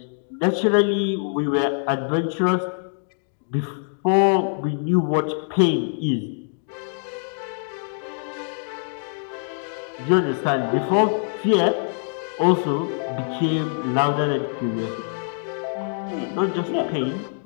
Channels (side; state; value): right; silent; digital silence